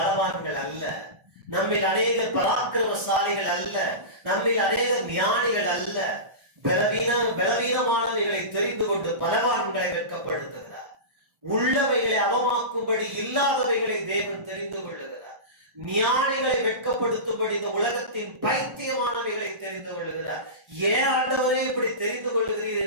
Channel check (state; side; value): late; left; 1.4 ms